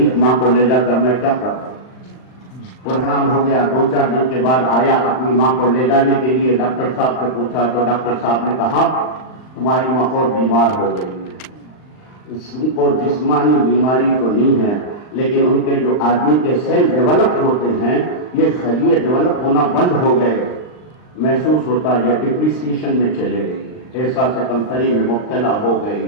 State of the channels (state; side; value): late; right; 39 ms